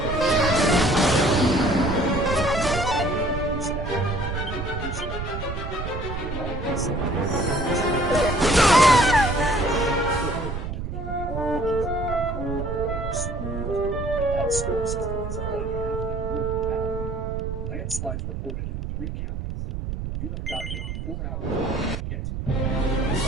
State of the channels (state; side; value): noise; right; rumble, 5 dB below the sound